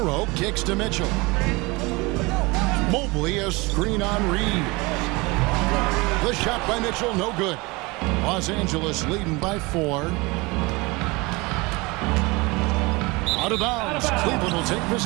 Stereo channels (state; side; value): quieter; left; 24.7 dB